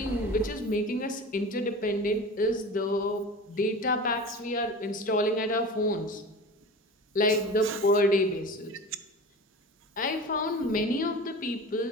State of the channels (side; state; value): both; normal; correlation 0.34